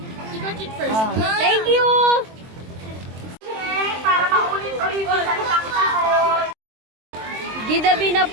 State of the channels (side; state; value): left; late; 23 ms